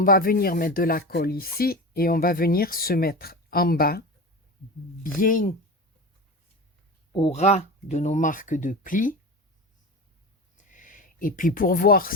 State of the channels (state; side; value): normal; both; correlation 0.27